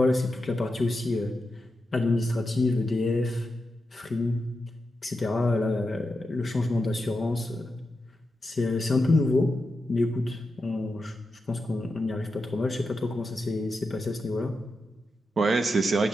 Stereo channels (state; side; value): normal; both; correlation 0.88